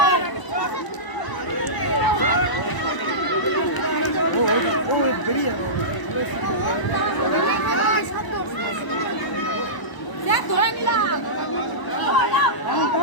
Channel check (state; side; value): late; right; 1.0 ms